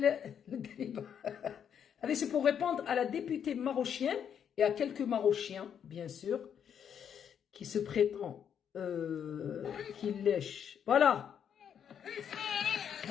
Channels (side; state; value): right; quieter; 8.3 dB